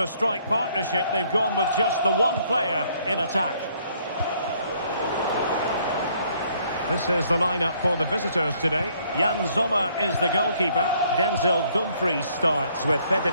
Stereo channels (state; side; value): inverted; both; correlation -0.65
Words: strike partnership, they've gone with just the one player in attack. This is the lineup for the visitors today. Jan Sommer is the goalkeeper. Denzel Dumfries starts with